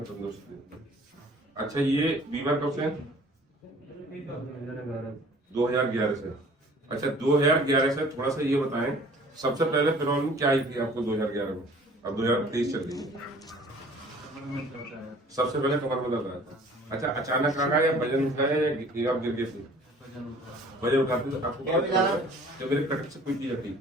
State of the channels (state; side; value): normal; both; correlation 0.51